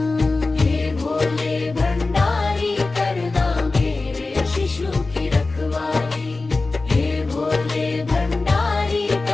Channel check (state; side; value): quieter; right; 3.5 dB